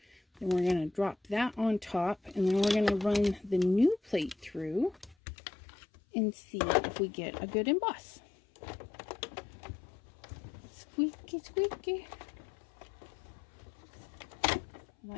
Then we're going to drop that on top, and then we're going to run the new plate through and see if we get a good emboss. Squeaky, squeaky.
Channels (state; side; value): drops out; right; at 5.2 s